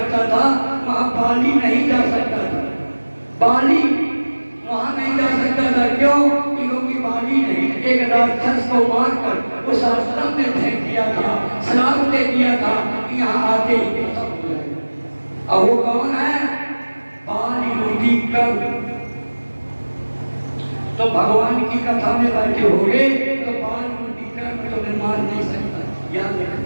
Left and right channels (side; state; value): both; inverted; correlation -1.00